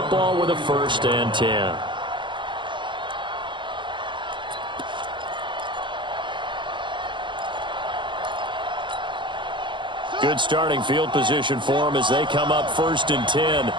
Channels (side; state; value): left; late; 0.23 ms